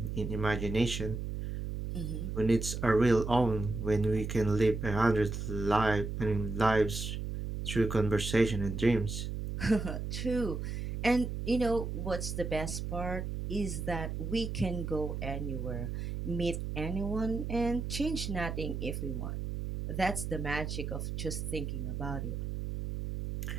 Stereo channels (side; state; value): right; noise; hum, 4 dB below the sound